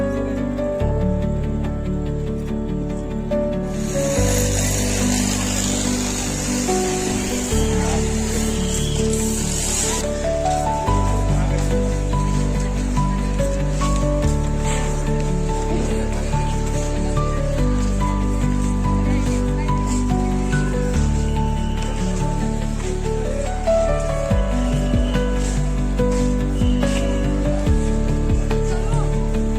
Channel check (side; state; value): both; identical; correlation 1.00